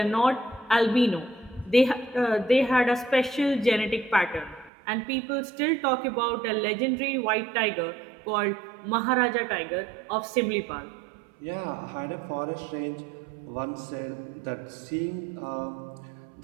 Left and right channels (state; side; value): drops out; left; at 4.7 s